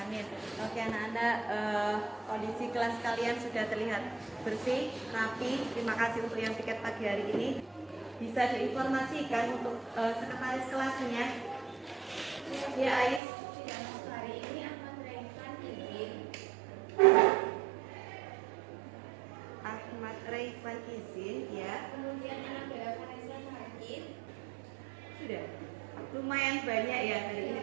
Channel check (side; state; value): left; drops out; at 13.2 s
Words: Oke anak-anak, kondisi kelas kalian sudah terlihat bersih, rapi. Terima kasih untuk yang tiket pagi hari ini. Bisa diinformasikan untuk sekretaris kelasnya. Ya Ais. Ya, hari ini akan menerangkan izin. Ahmad Raifan izin ya. Kemudian anak Bella Vanessa hadir. Sudah. Lumayan banyak ya hari ini